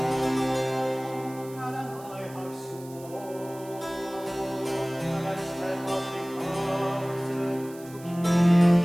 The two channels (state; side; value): noise; right; hiss, 21 dB below the sound